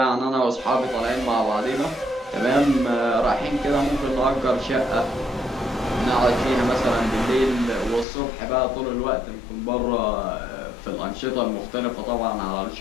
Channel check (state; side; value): drops out; right; at 8.1 s